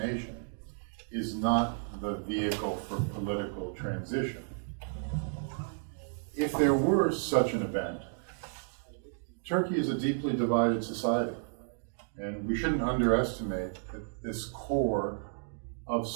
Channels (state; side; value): silent; left; digital silence